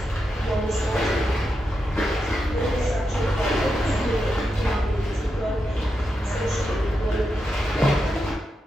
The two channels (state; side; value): normal; both; correlation 0.86